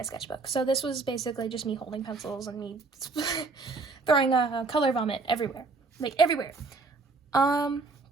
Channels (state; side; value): quieter; left; 3.9 dB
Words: sketchbook, so this was basically just me holding pencils and me throwing a color vomit everywhere, like everywhere.